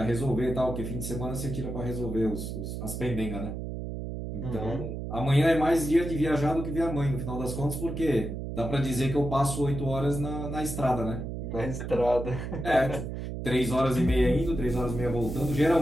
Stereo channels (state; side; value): noise; right; hum, 6 dB below the sound